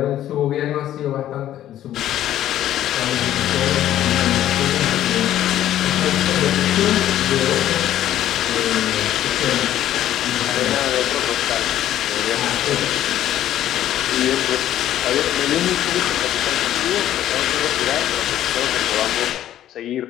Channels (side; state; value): right; quieter; 12.3 dB